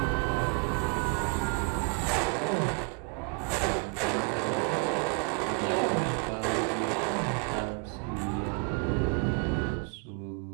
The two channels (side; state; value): left; quieter; 36.1 dB